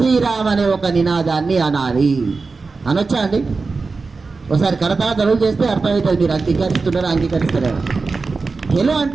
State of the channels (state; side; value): quieter; left; 4.2 dB